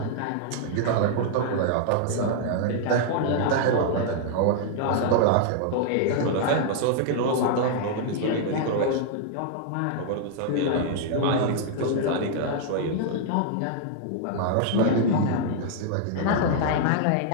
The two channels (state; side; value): different; both; correlation -0.01